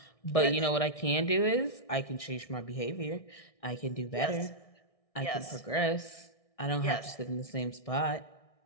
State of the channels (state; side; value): late; right; 1.6 ms